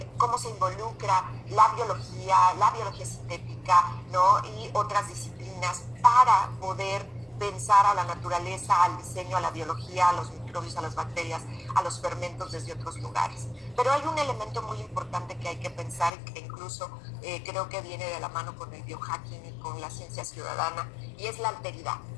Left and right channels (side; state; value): right; drops out; at 16.1 s